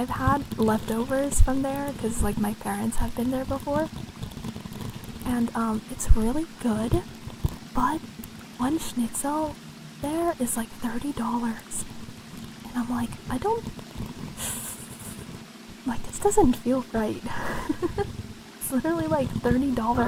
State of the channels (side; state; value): both; identical; correlation 1.00